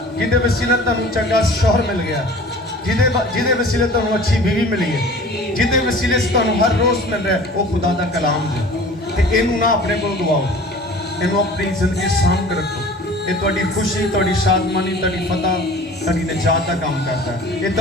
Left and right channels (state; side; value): normal; both; correlation 0.44